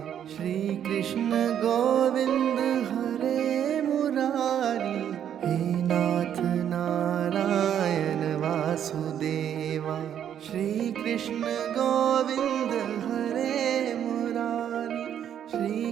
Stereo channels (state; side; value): quieter; left; 9.6 dB